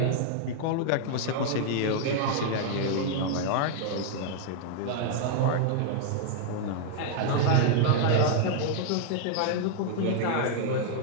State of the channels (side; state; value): both; different; correlation -0.01